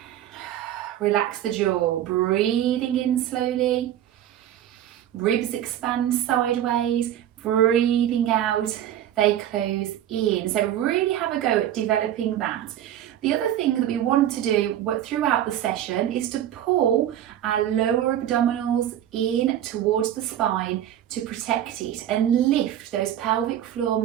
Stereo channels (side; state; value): left; quieter; 11.4 dB